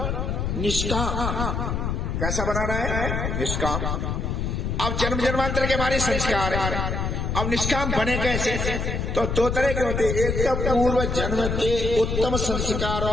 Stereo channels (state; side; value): noise; left; rumble, 1 dB below the sound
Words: निष्काम। कैसा बनाना है? निष्काम। अब जन्म जन्मांतर के हमारे संस्कार है, अब निष्काम बने कैसे? तो दो तरह के होते हैं। एक तो पूर्व जन्म के उत्तम